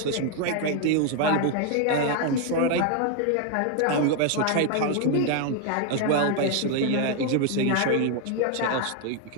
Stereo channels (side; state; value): both; different; correlation 0.00